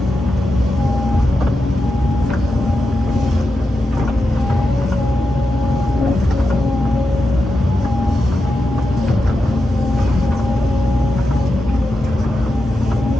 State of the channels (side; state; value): both; normal; correlation 0.88